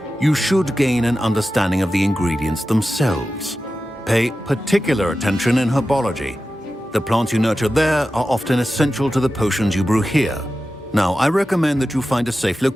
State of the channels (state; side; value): normal; both; correlation 0.93